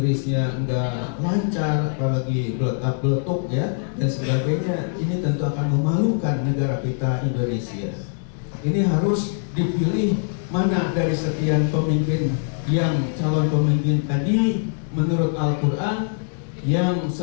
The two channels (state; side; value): silent; right; digital silence